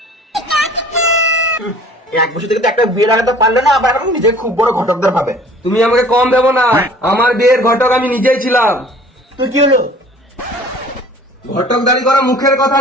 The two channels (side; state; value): both; normal; correlation 0.49